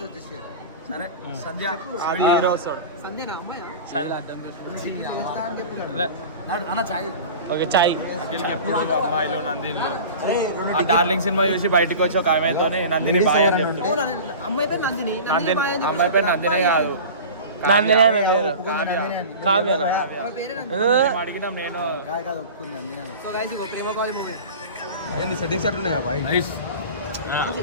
సరే సంధ్య అన్న చాయ్ ఓకే చాయ్. అమ్మాయిలో నందిని ఆ డార్లింగ్ సినిమా చూసి బయటకు వచ్చి ఒక ఆమెతోనే నందిని బాయ్ అని చెప్తుంది. అమ్మాయి పేరు నందిని. అమ్మాయి పేరు నందినే కాదు, నందిని అనే పేరు కావ్యనా? అడిగినా నేను సో గైస్ ఇగో ప్రేమ కాల్ మూవీ సెట్టింగ్స్ అట్లున్నాయి కదా బాయ్.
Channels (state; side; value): inverted; both; correlation -0.35